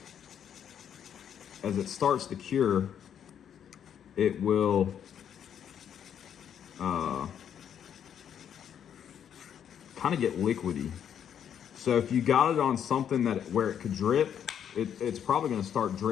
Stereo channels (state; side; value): quieter; right; 8.9 dB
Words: cure, it will kind of get liquidy. So if you got it on something where it could drip, it's probably going to start